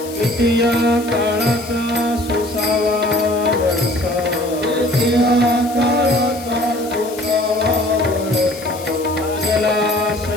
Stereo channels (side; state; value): left; noise; hiss, 15 dB below the sound